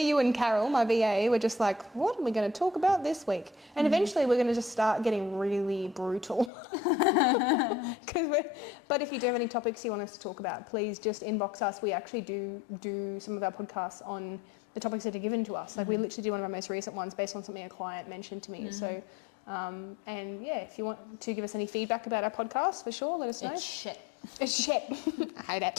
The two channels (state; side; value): drops out; right; at 6.5 s